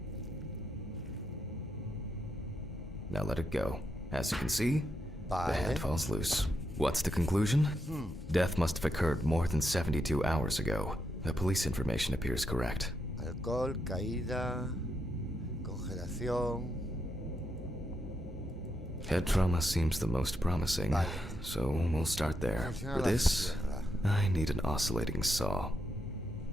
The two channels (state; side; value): normal; both; correlation 0.82